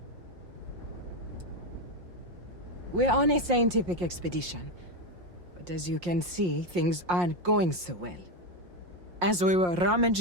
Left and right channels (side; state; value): left; late; 5.6 ms